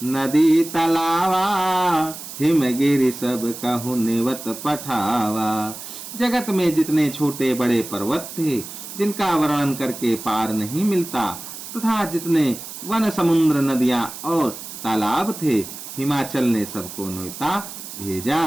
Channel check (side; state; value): right; noise; hiss, 11 dB below the sound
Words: नदी तलावा, हिमगिरि सब कहु निवत पठावा। जगत में जितने छोटे बड़े पर्वत थे, जिनका वर्णन करके पार नहीं मिलता, तथा जितने वन, समुद्र, नदियां और तालाब थे, हिमाचल ने सबको न्योता